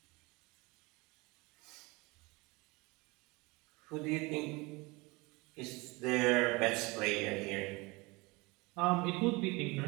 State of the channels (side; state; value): left; quieter; 24.8 dB